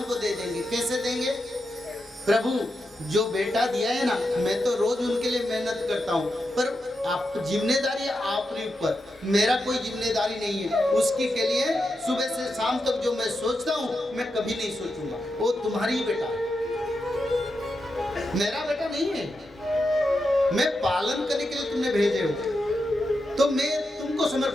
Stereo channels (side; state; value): both; normal; correlation 0.87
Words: को दे देंगे। कैसे देंगे? प्रभु जो बेटा दिया है ना, मैं तो रोज उनके लिए मेहनत करता हूँ, पर आप जिम्मेदारी आपके ऊपर, मेरा कोई जिम्मेदारी नहीं है। उसकी के लिए सुबह से शाम तक जो मैं सोचता हूँ मैं कभी नहीं सोचूंगा, वो तुम्हारी ही बेटा है, मेरा बेटा नहीं है। मैं पालन करने के लिए तुमने भेजे हो, तो मैं तुमको